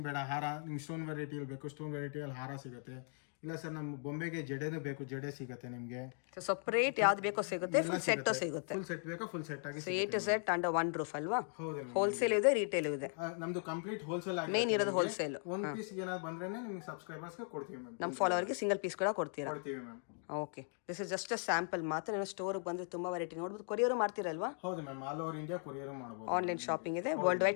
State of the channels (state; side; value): silent; right; 52 dB below the other